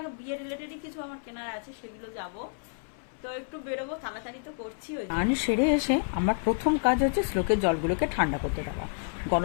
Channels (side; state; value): right; silent; 58 dB below the other